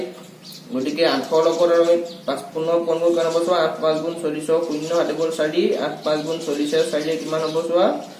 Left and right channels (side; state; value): both; identical; correlation 1.00